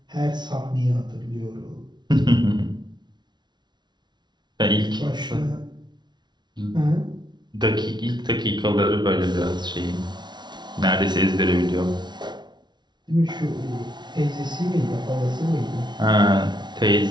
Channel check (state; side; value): late; left; 0.21 ms